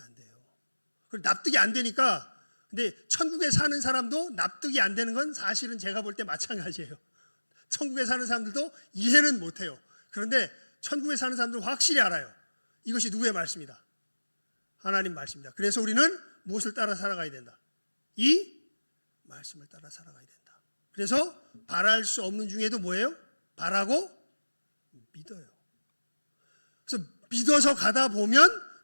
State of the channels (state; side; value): inverted; both; correlation -1.00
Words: 돼요. 그리고 납득이 안 되니까, 근데 천국에 사는 사람도 납득이 안 되는 건 사실은 제가 볼 때 마찬가지예요. 천국에 사는 사람들도 이해는 못해요. 그런데 천국에 사는 사람들은 확실히 알아요. 이것이 누구의 말씀이다? 하나님 말씀입니다. 그래서 우리는 무엇을 따라 살아가야 된다? 이 말씀을 따라 살아가야 된다. 그래서 바랄 수 없는 중에도 뭐예요? 바라고 믿어요. 그래서 믿어서 가다 보면